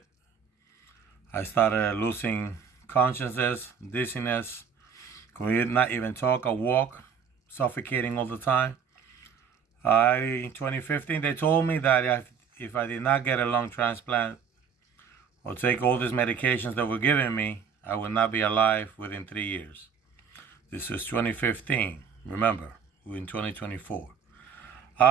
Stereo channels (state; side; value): quieter; left; 6.8 dB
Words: I started losing consciousness, dizziness, could not even talk or walk, suffocating all the time. In 2015, they told me that if I did not get a lung transplant or take all these medications that were giving me, I would not be alive within 3 years. This was 2015. Remember, we're in 2024.